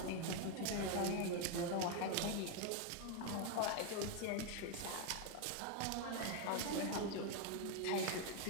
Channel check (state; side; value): different; both; correlation 0.01